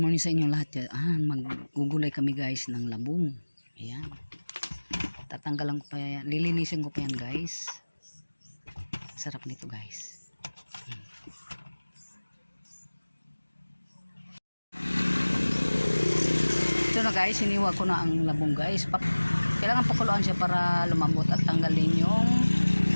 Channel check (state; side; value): inverted; both; correlation -1.00